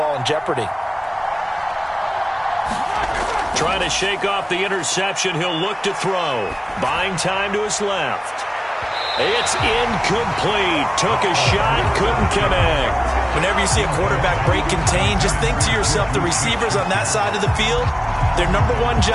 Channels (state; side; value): identical; both; correlation 1.00